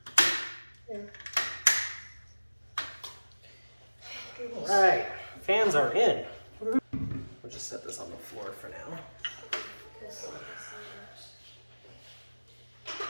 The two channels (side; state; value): both; inverted; correlation -1.00